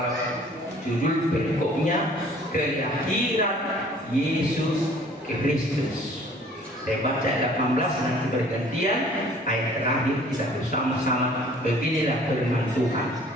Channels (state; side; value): normal; both; correlation 0.53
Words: judul berikutnya kelahiran Yesus Kristus. Saya baca ayat 18 nanti bergantian. Ayat terakhir kita bersama-sama. Beginilah firman Tuhan.